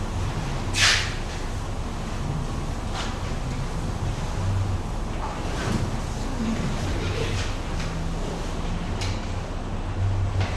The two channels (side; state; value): both; identical; correlation 1.00